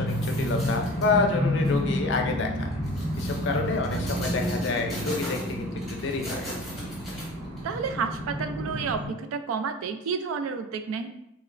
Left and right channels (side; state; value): both; normal; correlation 0.38